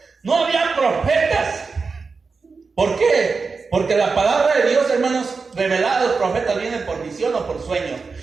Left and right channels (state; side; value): quieter; left; 4.6 dB